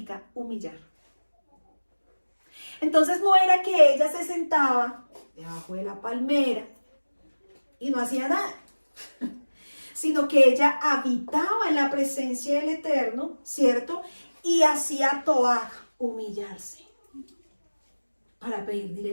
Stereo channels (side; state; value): both; inverted; correlation -1.00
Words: humillar. Entonces no era que ella se sentaba debajo de la palmera y no hacía nada, sino que ella habitaba en la presencia del Eterno, ¿cierto? Y hacía toaj, humillarse, para pedir